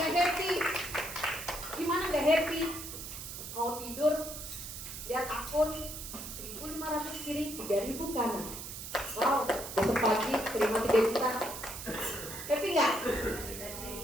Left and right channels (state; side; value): noise; right; hiss, 9 dB below the sound